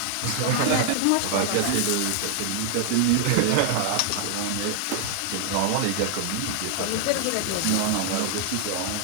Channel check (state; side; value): different; both; correlation 0.00